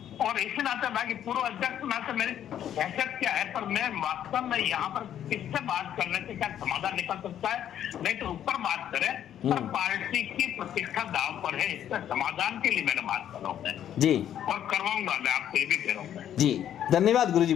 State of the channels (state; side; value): quieter; right; 10.4 dB